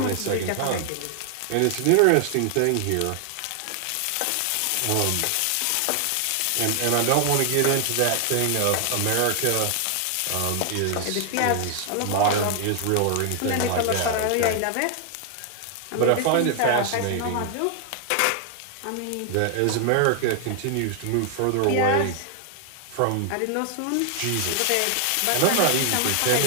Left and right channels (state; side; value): different; both; correlation 0.00